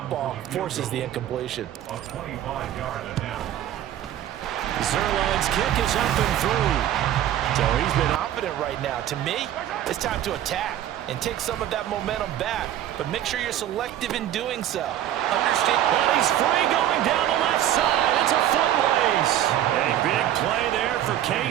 Forces the incompletion. Zerline's kick is up and through. So he's been confident right now. To me, it's time to attack and take some of that momentum back. But make sure you're selective in doing so. Understand? Well, he's free going down the left side. It's a foot race. A big play there for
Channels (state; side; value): quieter; left; 11.9 dB